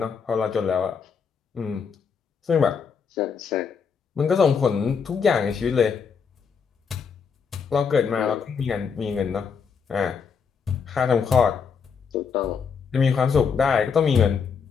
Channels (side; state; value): right; quieter; 6.1 dB